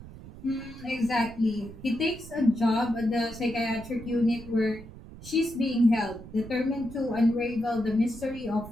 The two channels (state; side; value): noise; right; rumble, 16 dB below the sound